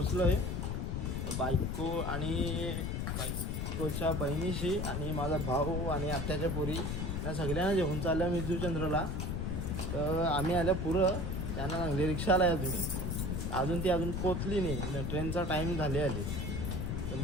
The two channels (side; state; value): left; noise; rumble, 2 dB below the sound